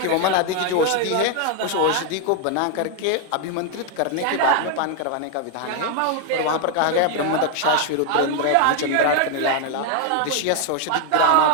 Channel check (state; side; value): different; both; correlation 0.00